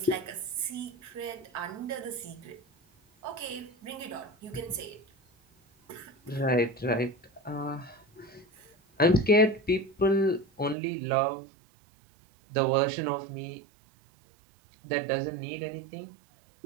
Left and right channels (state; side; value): drops out; left; at 10.8 s